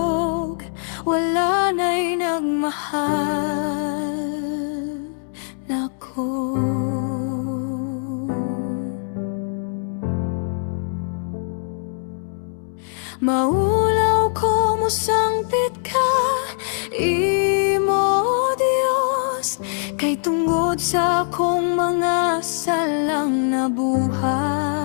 wala na'y nagmahal nako. Maulaw ko mo sangpit ka, imo Dios, kay tungod sa akong mga salang nabuhat.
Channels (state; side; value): silent; right; 64 dB below the other